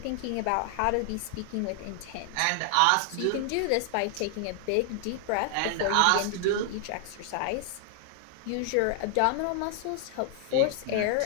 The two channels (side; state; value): both; different; correlation 0.00